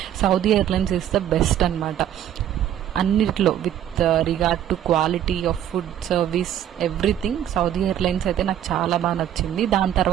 Saudi airlines is the best అనమాట. అన్నిట్లో with regard to quality of food, service, everything Saudi airlines అయితే నాకు చాలా బాగా నచ్చింది. దాని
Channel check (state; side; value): quieter; left; 10.8 dB